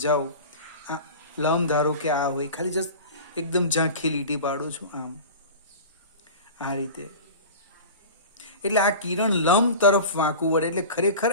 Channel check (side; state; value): both; inverted; correlation -0.34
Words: આ લંબ ધારો કે આ હોય, ખાલી જસ્ટ એકદમ ઝાંખી લીટી પાડું છું આમ, આ રીતે. એટલે આ કિરણ લંબ તરફ વાંકું વળે, એટલે ખરેખર